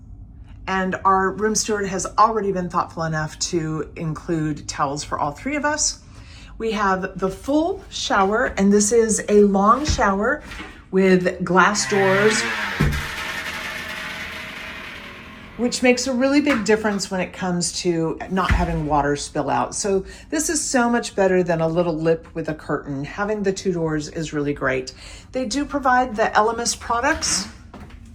and our room steward has already been thoughtful enough to include towels for all 3 of us. We have the full shower, and this is a long shower with glass doors, which makes a really big difference when it comes to not having water spill out. So this is so much better than a little lip with a curtain. Having the 2 doors is really great. They do provide the Elemis products.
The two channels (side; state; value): both; identical; correlation 1.00